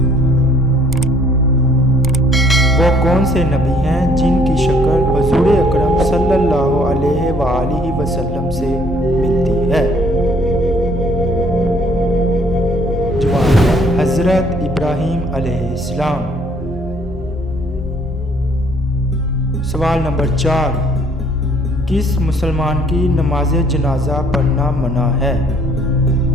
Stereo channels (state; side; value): normal; both; correlation 0.61